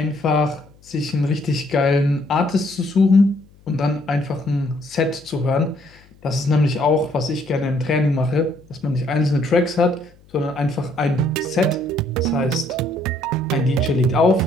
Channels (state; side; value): noise; left; hum, 28 dB below the sound